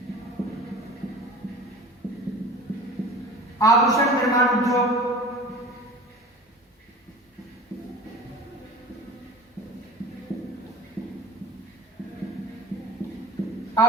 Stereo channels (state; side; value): normal; both; correlation 0.38